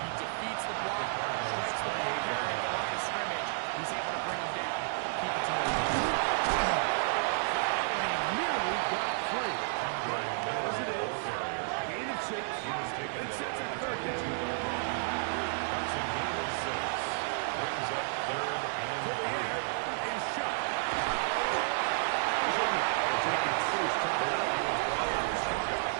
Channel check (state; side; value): silent; left; 57 dB below the other